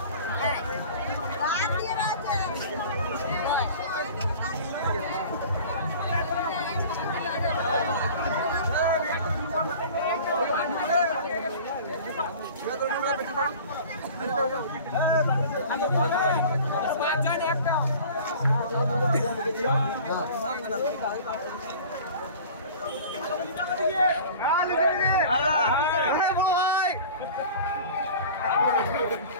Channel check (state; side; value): inverted; both; correlation -0.41